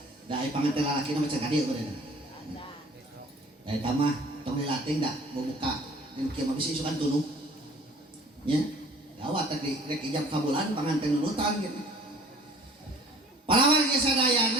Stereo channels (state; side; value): normal; both; correlation 0.50